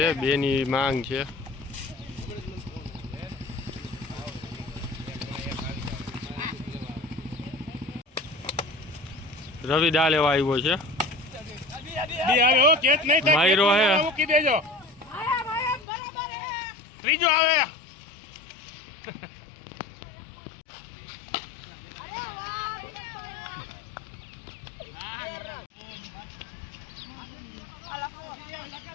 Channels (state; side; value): drops out; right; at 15.9 s